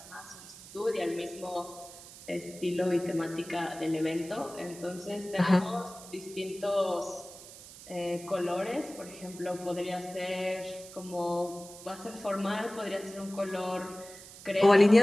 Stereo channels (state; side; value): noise; right; hiss, 17 dB below the sound